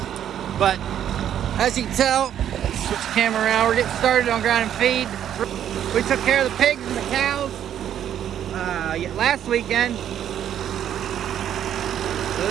But as you can tell, switch the camera around. We're getting started on grinding feed. We took care of the pigs and the cows last weekend. So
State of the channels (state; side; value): quieter; left; 10.2 dB